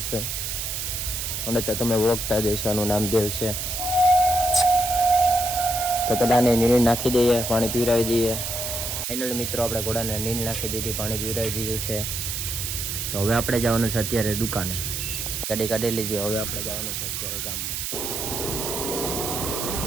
છે અને તો તમે ઓળખતા જ હશો, આનું નામ દેવ છે। તો પેલાને નીંદ નાખી દઈએ, પાણી પીવડાવી દઈએ। ફાઇનલી મિત્રો આપણે ઘોડાને નીંદ નાખી દીધી, પાણી પીવડાવી દીધું છે। તો હવે આપણે જવાનું છે અત્યારે દુકાને, ગાડી કાઢી લીધી। હવે આપણે જવાનું છે અત્યારે ગામમાં।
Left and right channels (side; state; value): right; noise; hiss, 3 dB below the sound